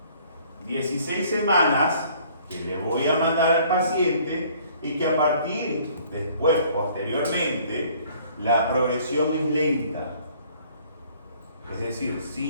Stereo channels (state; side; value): inverted; both; correlation -0.57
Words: 16 semanas que le voy a mandar al paciente y que a partir, después, posteriormente, la progresión es lenta. Es decir,